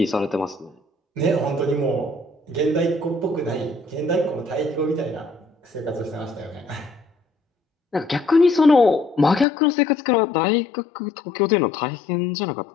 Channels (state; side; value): drops out; right; at 9.5 s